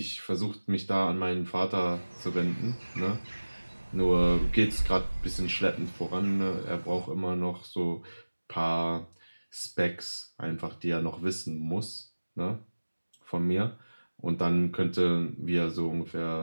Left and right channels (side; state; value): both; inverted; correlation -1.00